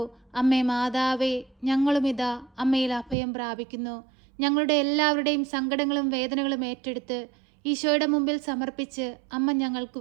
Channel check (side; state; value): left; drops out; at 3.2 s